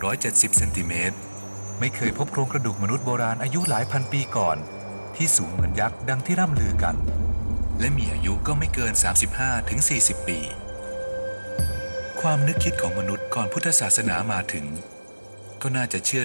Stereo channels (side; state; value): both; inverted; correlation -1.00